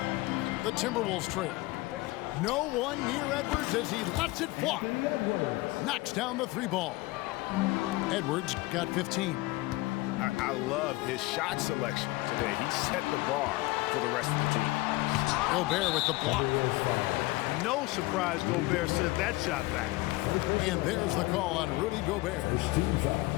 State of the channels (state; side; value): quieter; right; 20.8 dB